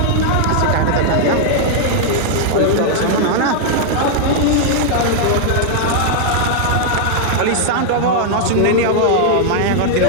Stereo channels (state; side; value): different; both; correlation -0.01